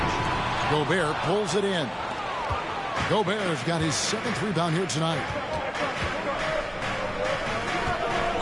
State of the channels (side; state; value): both; identical; correlation 1.00